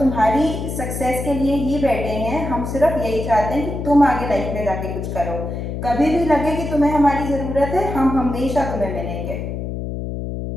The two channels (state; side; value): noise; left; hum, 5 dB below the sound